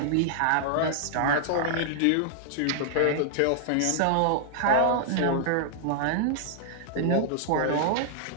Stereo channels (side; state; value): both; different; correlation -0.01